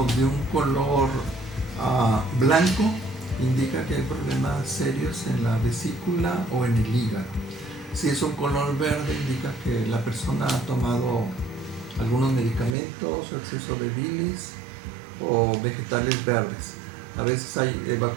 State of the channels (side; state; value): left; drops out; at 12.8 s